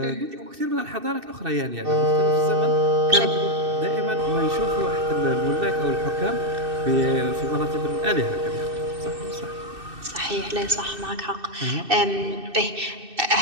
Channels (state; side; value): late; left; 2.6 ms